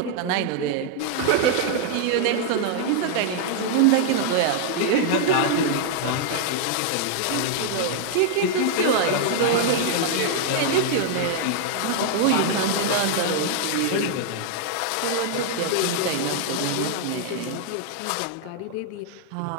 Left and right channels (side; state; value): both; different; correlation 0.00